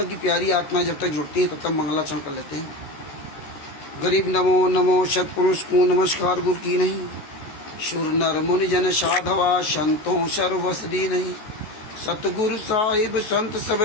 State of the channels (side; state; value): right; late; 14 ms